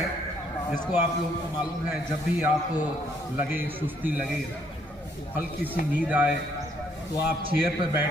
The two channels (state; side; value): normal; both; correlation 0.68